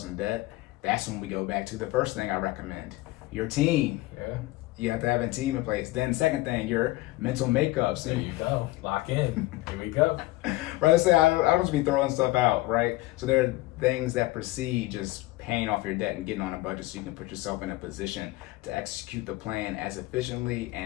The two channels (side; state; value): right; quieter; 19.1 dB